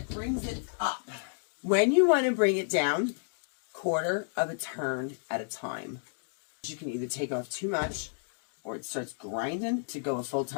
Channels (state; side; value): silent; right; digital silence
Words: brings it up. When you want to bring it down, 1/4 of a turn at a time. You can either take off too much, or it starts grinding. To go a full